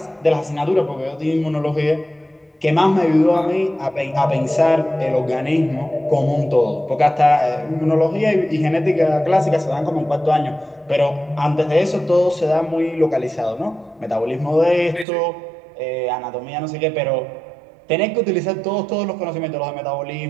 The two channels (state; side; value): drops out; left; at 15.1 s